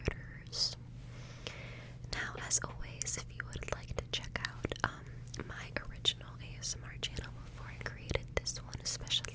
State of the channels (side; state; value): both; identical; correlation 1.00